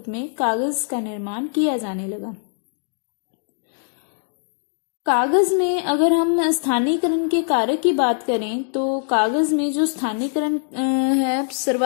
में कागज का निर्माण किया जाने लगा। कागज में अगर हम स्थानीयकरण के कार्य की बात करें तो कागज में जो स्थानीयकरण है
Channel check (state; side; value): silent; right; 64 dB below the other